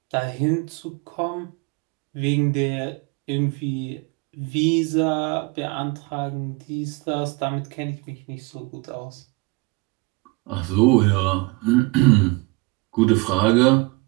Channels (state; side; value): quieter; left; 25.7 dB